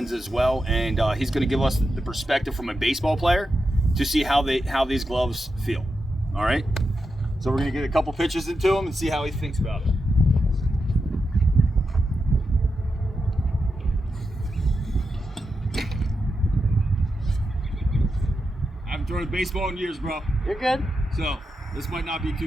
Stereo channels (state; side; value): normal; both; correlation 0.88